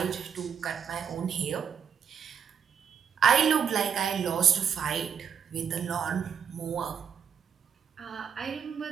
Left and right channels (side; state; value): left; quieter; 7.4 dB